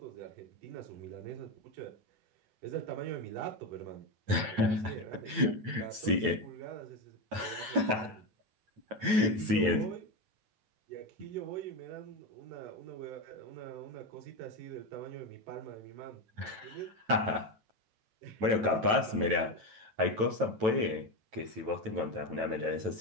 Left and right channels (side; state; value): left; late; 9.1 ms